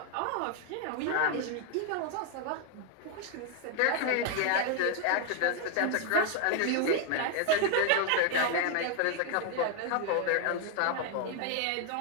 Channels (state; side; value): different; both; correlation 0.01